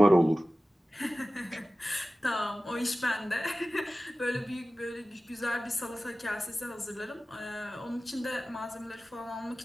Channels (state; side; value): normal; both; correlation 0.96